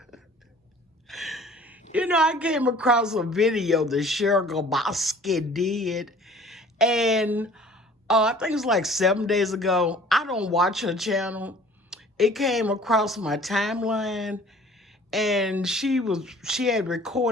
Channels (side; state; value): both; normal; correlation 0.50